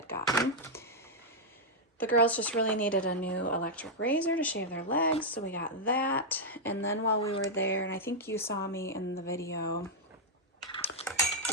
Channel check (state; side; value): normal; both; correlation -0.05